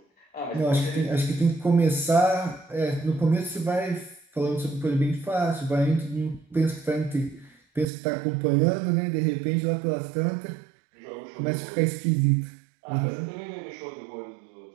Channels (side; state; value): left; drops out; at 7.9 s